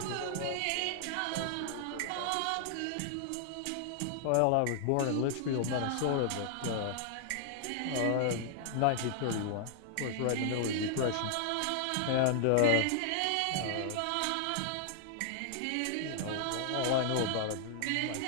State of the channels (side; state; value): both; different; correlation -0.01